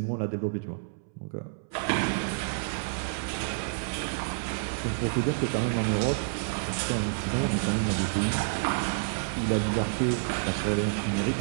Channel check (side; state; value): left; silent; 59 dB below the other